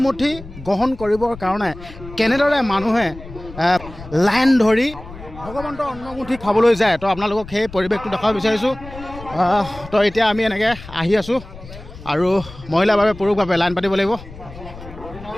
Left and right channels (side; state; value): left; noise; rumble, 16 dB below the sound